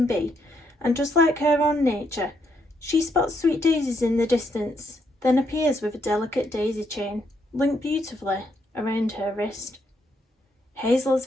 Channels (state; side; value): normal; both; correlation 0.76